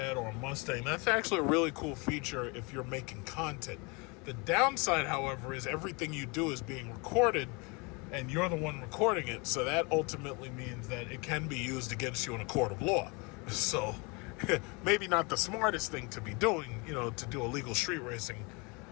or a Mustang, that's actually a really cool feature if you're making content. The downside, however, is everything you do is being recorded and you're the one recording it, so that ultimately means that it can be used against you in a court of law. So maybe not the smartest thing to be doing, to do illegal street racing,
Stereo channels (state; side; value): quieter; right; 29.4 dB